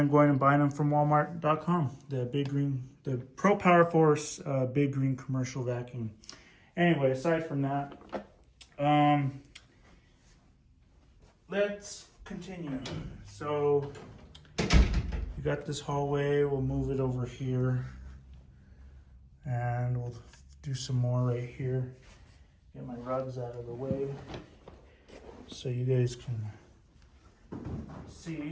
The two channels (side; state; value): both; identical; correlation 1.00